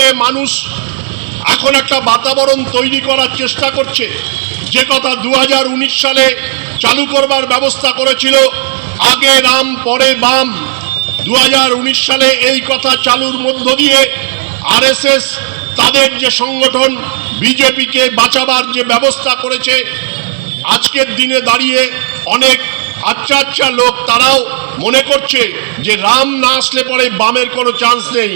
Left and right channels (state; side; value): silent; left; 68 dB below the other